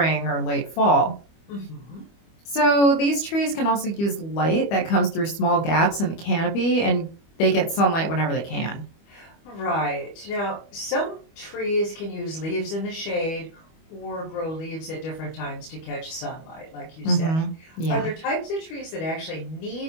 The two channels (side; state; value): right; late; 25 ms